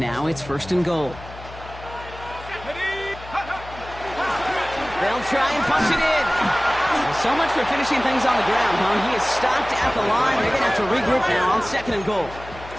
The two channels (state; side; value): noise; left; hum, 16 dB below the sound